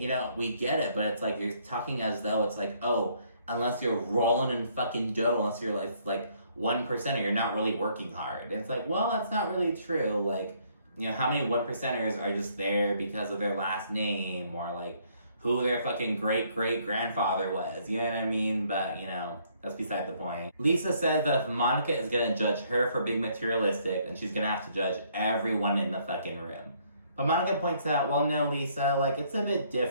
know, we get it. But it's like, you're talking as though it's like, oh, unless you're rolling in fucking dough, unless you're like 1%er, you're not really working hard. And it's like, well, that's not really true. Like, you know, how many 1%ers are just there because of their last name? Or, like, who their fucking great-great-grandfather was. You know what I mean? But, you know, that's beside the point. Lisa says that if Monica is gonna judge her for being materialistic, then she's gonna have to judge everyone in the fucking room. But Monica points out, well, no, Lisa, like, it's a bit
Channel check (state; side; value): inverted; both; correlation -0.66